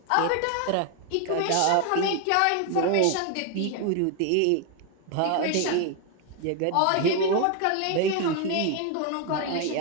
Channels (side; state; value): both; different; correlation 0.01